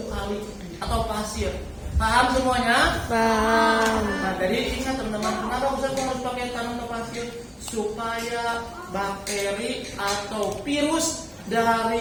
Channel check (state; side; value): identical; both; correlation 1.00